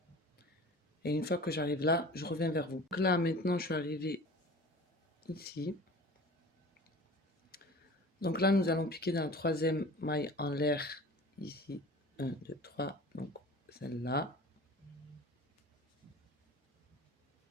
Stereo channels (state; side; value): normal; both; correlation 0.40